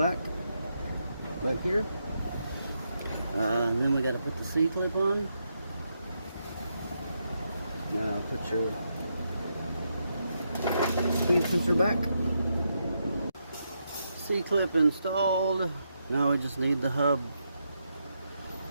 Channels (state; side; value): inverted; both; correlation -0.82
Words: here. And then we got to put the C-clip on. Now put your speed sensor back. C-clip installed. Now we just need the hub